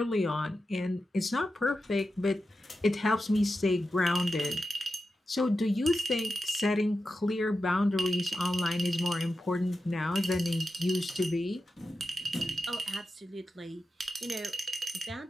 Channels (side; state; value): both; normal; correlation 0.91